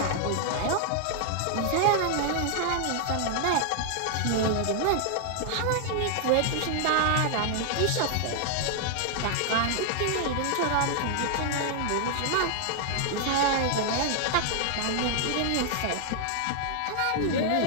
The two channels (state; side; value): different; both; correlation 0.00